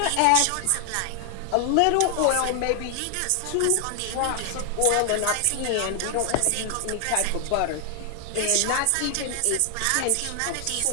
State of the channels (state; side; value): different; both; correlation 0.00